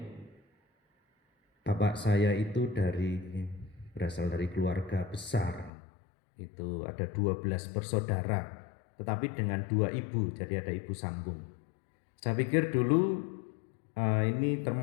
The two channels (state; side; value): drops out; right; at 5.7 s